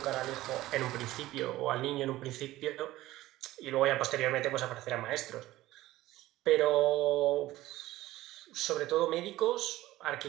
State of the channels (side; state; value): left; quieter; 16.4 dB